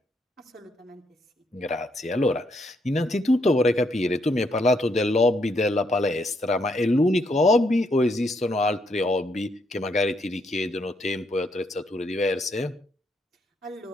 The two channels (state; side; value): normal; both; correlation 0.75